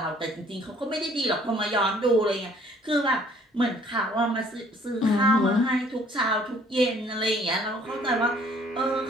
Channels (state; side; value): normal; both; correlation 0.58